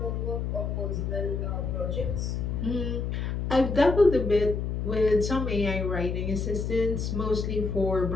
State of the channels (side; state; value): left; noise; hum, 2 dB below the sound